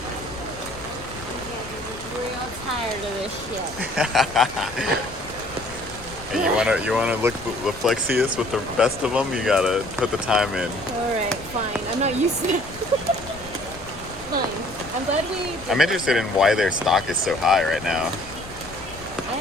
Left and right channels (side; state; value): left; noise; rumble, 17 dB below the sound